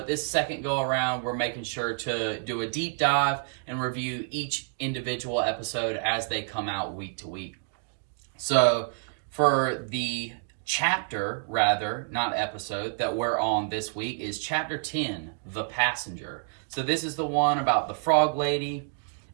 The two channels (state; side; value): silent; left; 59 dB below the other